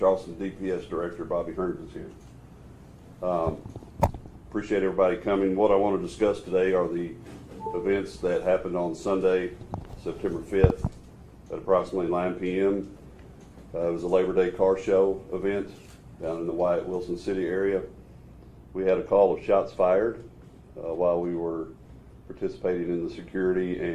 DPS Director Bobby Hearns is here. Appreciate everybody coming. What I want to discuss today are the events that happened on Sunday, September 5th at approximately 9 p.m. It was a Labor Day car show event down in the Wyatt Wilson City area. We had a call of shots fired while we were participating in the security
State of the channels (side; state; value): both; identical; correlation 1.00